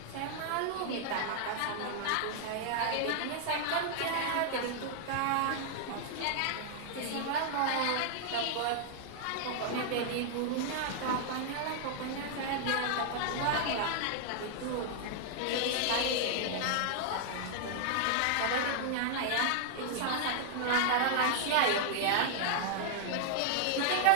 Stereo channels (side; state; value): both; different; correlation -0.01